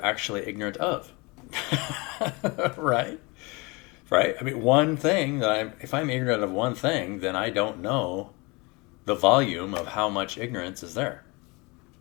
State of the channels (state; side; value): quieter; right; 26.9 dB